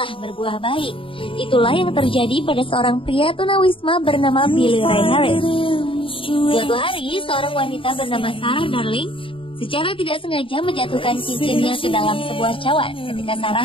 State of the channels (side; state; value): right; late; 0.25 ms